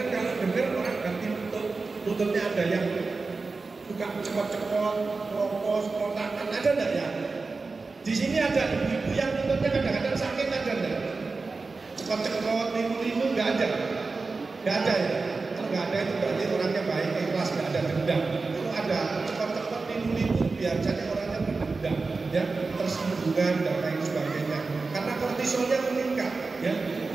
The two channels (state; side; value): quieter; left; 4.0 dB